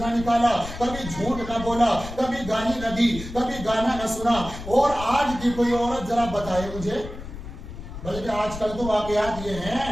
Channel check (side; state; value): left; noise; rumble, 11 dB below the sound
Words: نکالا، کبھی جھوٹ نہ بولا، کبھی گالی نہ دی، کبھی گانا نہ سنا. اور آج کی کوئی عورت ذرا بتائے مجھے، بلکہ آج کل تو واقعات یہ